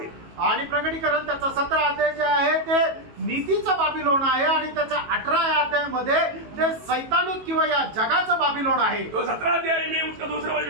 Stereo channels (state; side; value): late; left; 18 ms